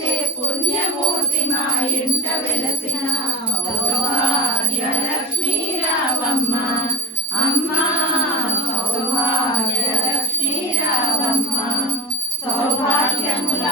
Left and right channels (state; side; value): normal; both; correlation 0.21